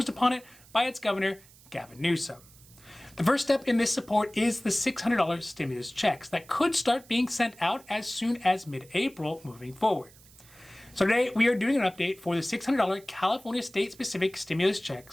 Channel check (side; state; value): right; noise; hiss, 24 dB below the sound